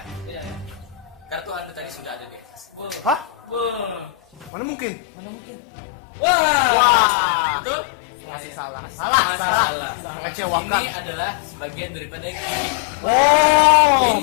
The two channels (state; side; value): drops out; right; at 4.5 s